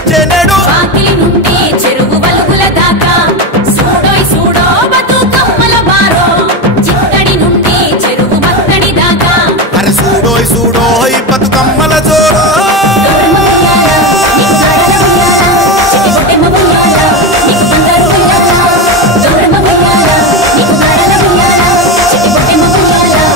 వాకిలి నుండి చెరువు వలుగుల దాకా చూడోయ్ చూడో బతుకమ్మల బారో చిత్తడి నుండి చెరువు మత్తడి దాకా అరే చూడోయ్ చూడోయ్ బతుకమ్మల జోడో గౌరమ్మ ఉయ్యాల, నీకు గారాల ఉయ్యాల, చిట్టి పొట్టెమ్మ ఉయ్యాల, నీకు బంగారు ఉయ్యాల. గౌరమ్మ ఉయ్యాల, నీకు గారాల ఉయ్యాల, చిట్టి పొట్టెమ్మ ఉయ్యాల,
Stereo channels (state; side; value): normal; both; correlation 0.16